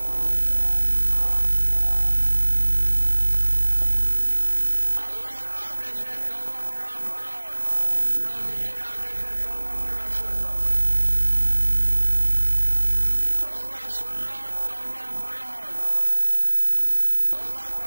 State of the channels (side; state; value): both; inverted; correlation -1.00